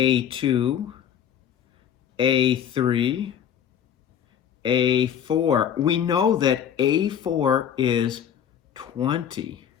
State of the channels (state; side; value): quieter; right; 9.1 dB